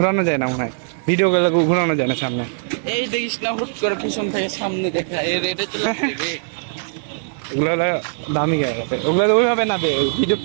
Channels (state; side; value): silent; left; digital silence